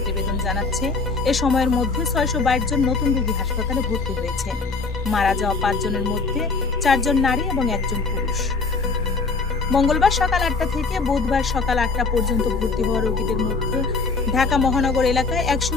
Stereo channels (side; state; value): right; quieter; 4.2 dB